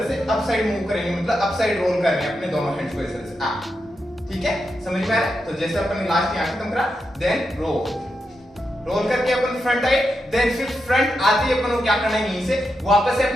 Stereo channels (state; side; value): normal; both; correlation 0.86